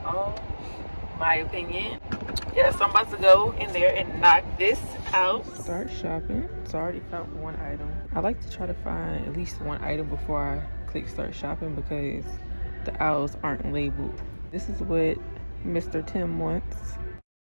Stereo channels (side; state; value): both; inverted; correlation -1.00